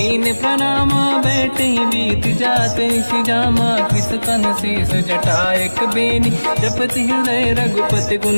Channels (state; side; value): inverted; both; correlation -1.00